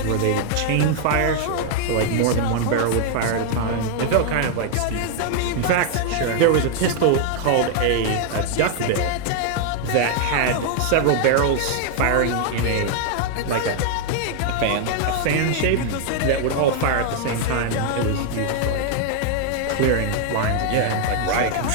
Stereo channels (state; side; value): different; both; correlation 0.00